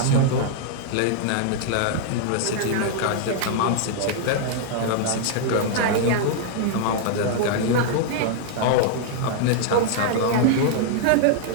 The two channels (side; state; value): both; different; correlation -0.01